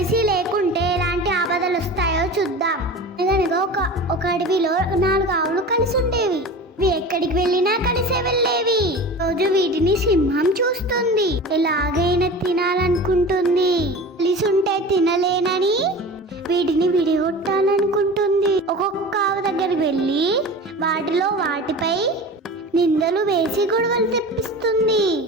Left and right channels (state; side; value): normal; both; correlation 0.34